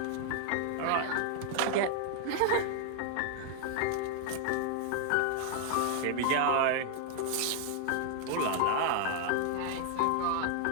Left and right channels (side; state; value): both; different; correlation 0.00